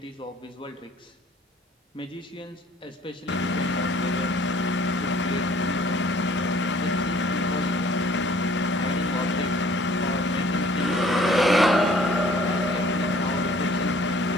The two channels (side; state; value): both; normal; correlation 0.54